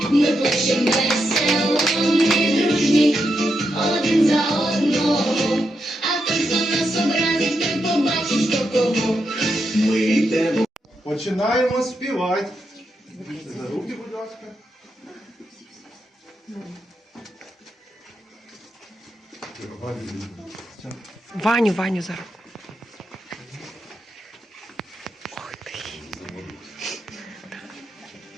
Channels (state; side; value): normal; both; correlation 0.84